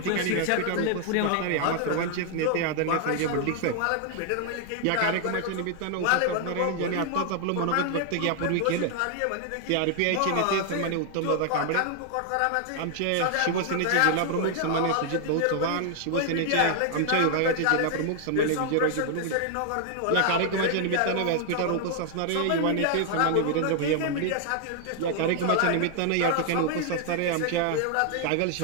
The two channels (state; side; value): different; both; correlation 0.00